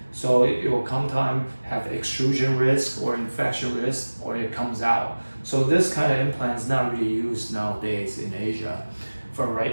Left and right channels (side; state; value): both; inverted; correlation -1.00